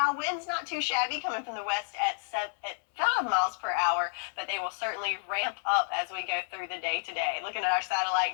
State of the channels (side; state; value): right; silent; digital silence